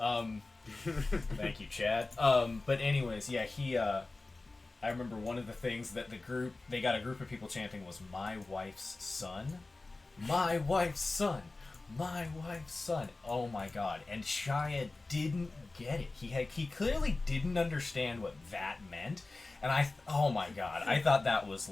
Thank you, Chad. But anyways, yeah, I remember one of the things that they got a group of people chanting was "My wife's son, my wife's son, my wife's son." Oh my god! And Shia didn't get it. He clearly didn't understand what that meant, And oh my god, I thought that was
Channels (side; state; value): right; quieter; 3.3 dB